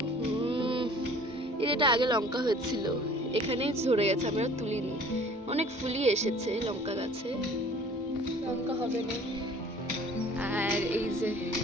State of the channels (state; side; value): normal; both; correlation 0.50